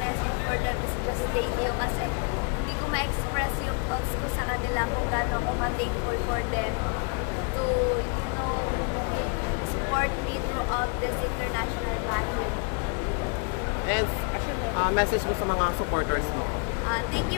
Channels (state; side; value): quieter; right; 37.0 dB